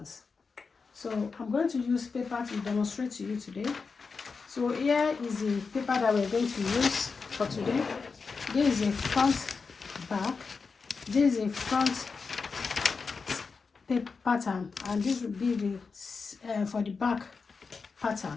So I'm going to use paper to demonstrate to you today. So here is the paper that we're going to use for today. This is a front back. This is a front pattern, and this will be the for the back pattern.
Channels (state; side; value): quieter; right; 4.8 dB